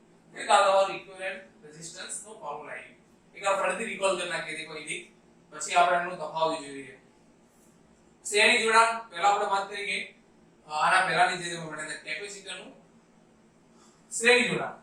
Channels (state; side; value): identical; both; correlation 1.00